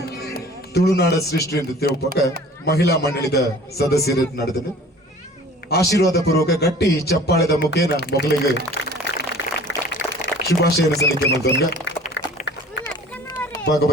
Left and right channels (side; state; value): both; normal; correlation 0.47